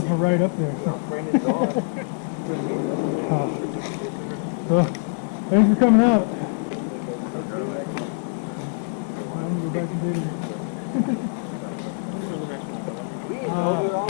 were right up there. So. So thanks for coming out. I'm gonna go back to bed.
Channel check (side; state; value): right; silent; digital silence